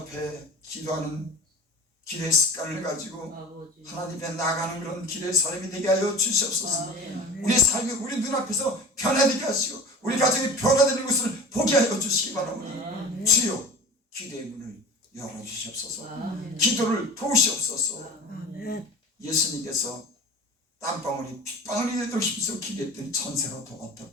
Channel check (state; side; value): normal; both; correlation 0.37